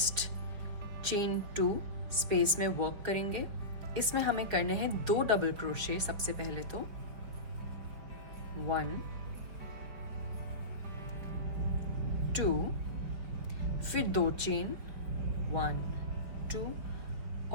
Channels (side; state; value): left; late; 4.8 ms